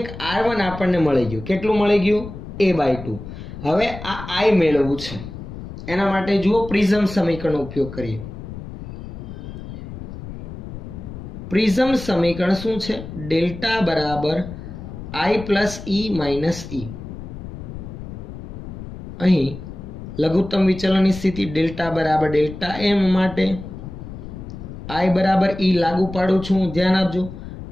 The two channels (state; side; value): noise; left; rumble, 11 dB below the sound